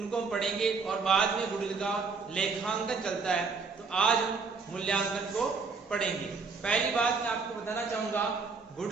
हम पढ़ेंगे और बाद में गुडविल का लेखांकन चलता है, तो आज हम मूल्यांकन को पढ़ेंगे। पहली बात मैं आपको बताना चाहूंगा,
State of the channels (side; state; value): left; quieter; 4.7 dB